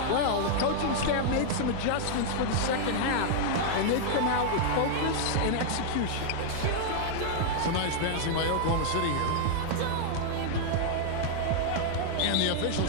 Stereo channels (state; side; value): different; both; correlation -0.01